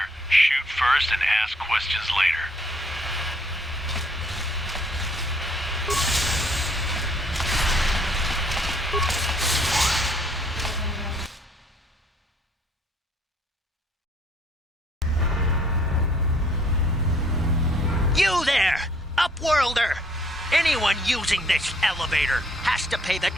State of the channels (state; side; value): normal; both; correlation 0.63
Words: shoot first and ask questions later. You there, Upworlder! Anyone using this elevator has to pay the